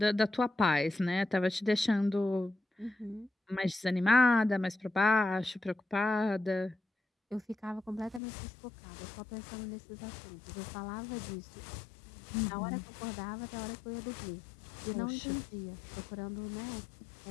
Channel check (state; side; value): drops out; right; at 8.2 s